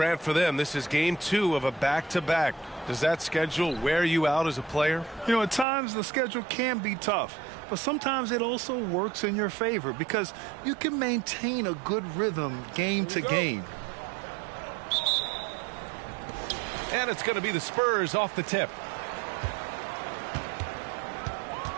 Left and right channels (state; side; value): drops out; left; at 5.7 s